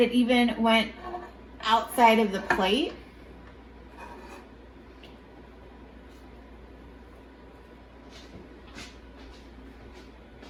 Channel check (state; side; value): identical; both; correlation 1.00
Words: even went outside of the plate.